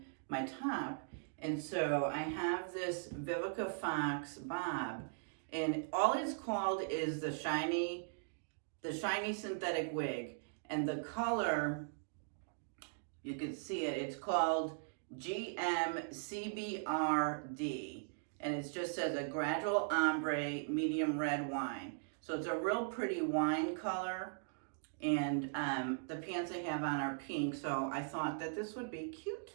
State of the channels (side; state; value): left; silent; digital silence